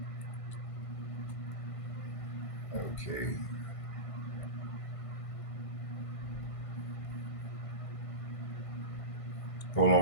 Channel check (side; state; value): right; late; 1.5 ms